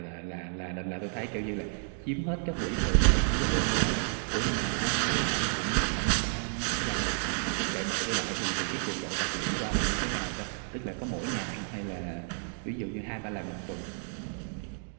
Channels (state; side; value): silent; left; 57 dB below the other